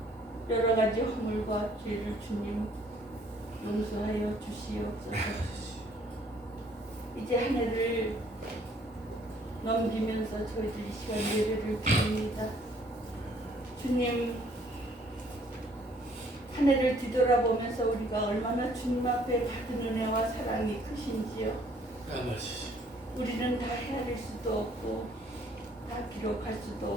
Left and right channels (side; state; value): both; normal; correlation 0.61